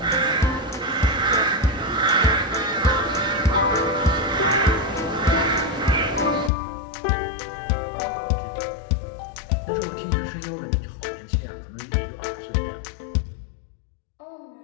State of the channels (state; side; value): drops out; right; at 6.5 s